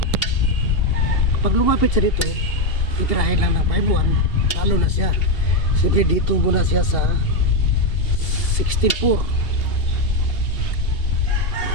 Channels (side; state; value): right; late; 2.8 ms